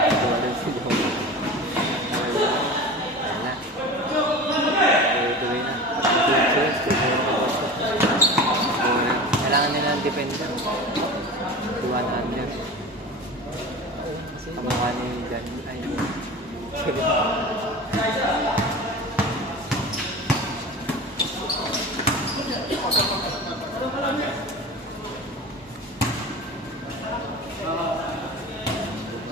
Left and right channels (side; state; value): both; normal; correlation 0.33